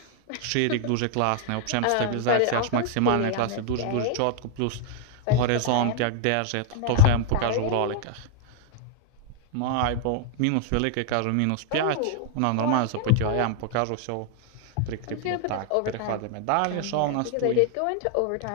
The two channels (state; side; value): different; both; correlation -0.01